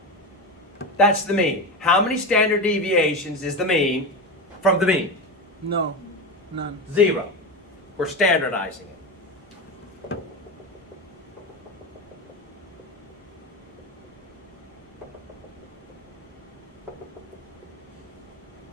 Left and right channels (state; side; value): normal; both; correlation 0.20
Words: That's the mean. How many standard deviations is the mean from the mean? No, none. 0. We're standardizing it.